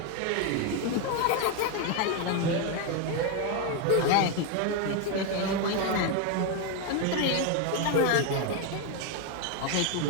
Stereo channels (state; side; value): different; both; correlation 0.01